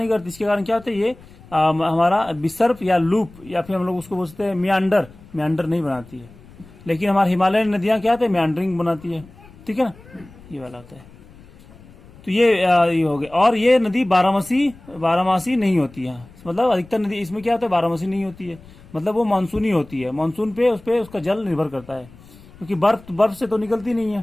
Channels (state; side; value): noise; left; rumble, 22 dB below the sound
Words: करती। इसके कारण क्या होता है, ये हमारा विसर्प या लूप, या फिर हम लोग उसको बोलते हैं मियांडर नहीं बनाती है। लेकिन हमारी हिमालय नदियां क्या होते हैं, मियांडरिंग बनाती है। ठीक है ना, ये वाला होता है। तो ये हो गया। और ये नदी बारहमासी नहीं होती है, मतलब अधिकतर नदी इसमें क्या होता है, बारहमासी नहीं होती है, मतलब वो मानसूनी होती है। मानसून पे उसका जल निर्भर करता है, क्योंकि बर्फ से तो निकलती नहीं